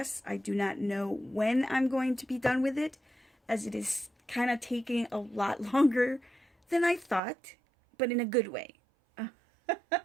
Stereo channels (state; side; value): drops out; left; at 7.2 s